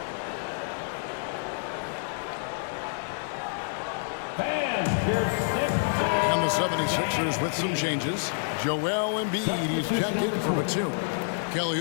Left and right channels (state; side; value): silent; right; 59 dB below the other